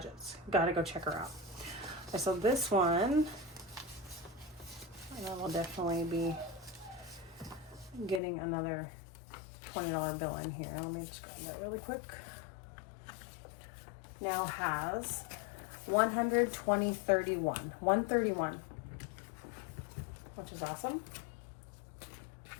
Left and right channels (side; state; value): right; drops out; at 8.2 s